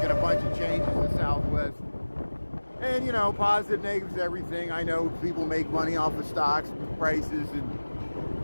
a bunch of changes to Southwest. And, you know, positive, negatives, everything. I know people make money off of stocks, prices,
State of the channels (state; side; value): inverted; both; correlation -1.00